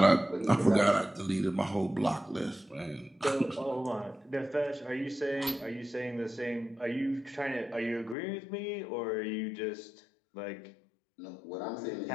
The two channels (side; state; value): right; drops out; at 8.2 s